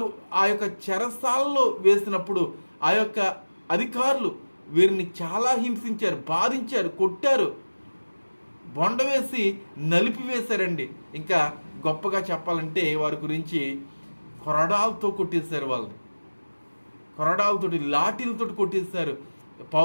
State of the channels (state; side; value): inverted; both; correlation -1.00